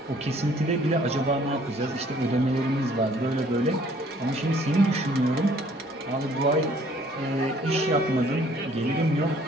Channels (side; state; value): both; normal; correlation 0.59